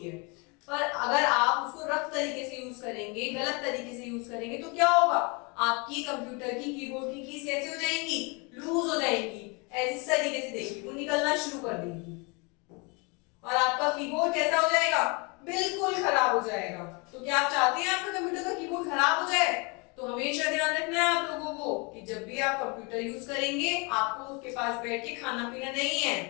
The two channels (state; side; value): quieter; right; 30.5 dB